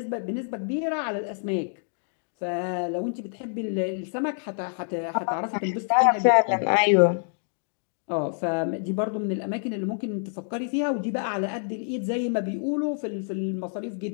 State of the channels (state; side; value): silent; right; digital silence